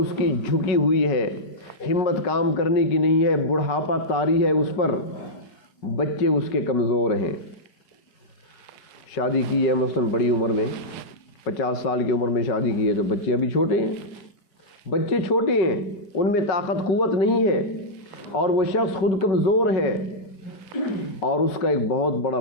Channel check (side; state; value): right; late; 4.7 ms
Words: کی جھکی ہوئی ہے، ہمت کام کرنے کی نہیں ہے، بڑھاپا طاری ہے اس پر، بچے اس کے کمزور ہیں. شادی کی ہے مثلاً بڑی عمر میں، 50 سال کی عمر میں شادی کی ہے، تو بچے ابھی چھوٹے ہیں، بچے چھوٹے ہیں، ان میں طاقت قوت نہیں ہے، اور وہ شخص خود کمزور ہے، اور اس کا ایک بہت بڑا